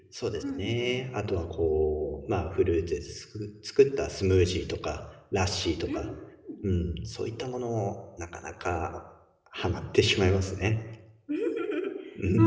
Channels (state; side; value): identical; both; correlation 1.00